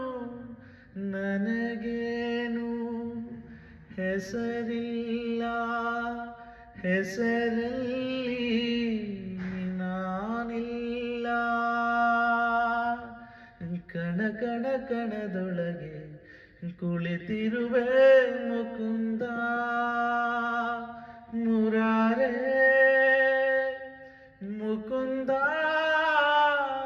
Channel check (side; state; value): both; identical; correlation 1.00